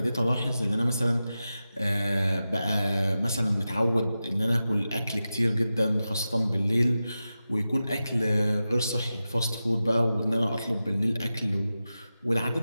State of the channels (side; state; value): both; inverted; correlation -0.93